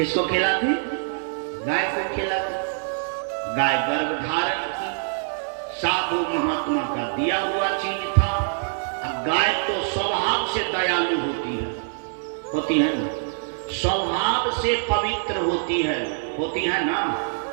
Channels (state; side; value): silent; left; 62 dB below the other